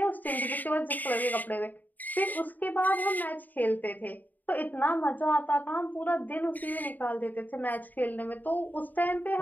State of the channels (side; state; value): right; late; 0.085 ms